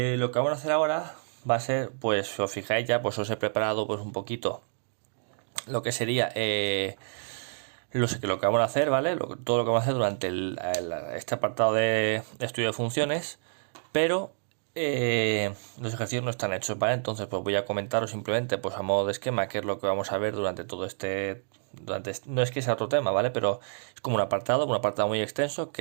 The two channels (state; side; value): silent; left; digital silence